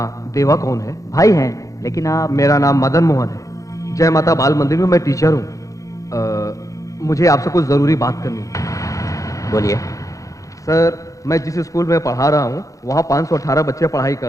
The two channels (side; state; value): right; late; 0.16 ms